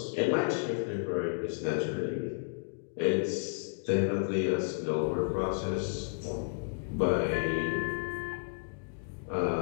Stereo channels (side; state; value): right; silent; digital silence